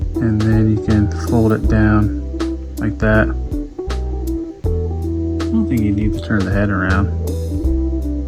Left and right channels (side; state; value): both; identical; correlation 1.00